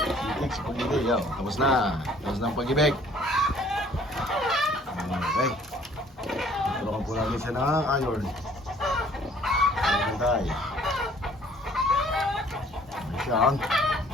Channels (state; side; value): normal; both; correlation 0.57